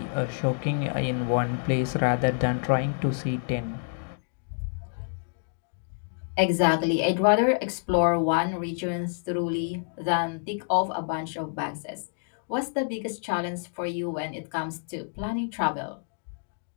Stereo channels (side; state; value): right; silent; digital silence